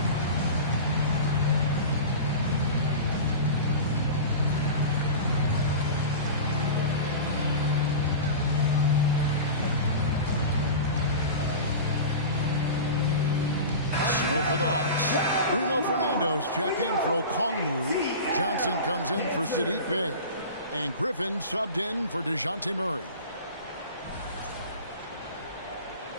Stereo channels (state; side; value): inverted; both; correlation -0.31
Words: For the Hawks, Bruno Fernando's checked in for Okongwu. Johnson comes in for Sadiq Bey. And Griffin subbed in for DeJounte Murray.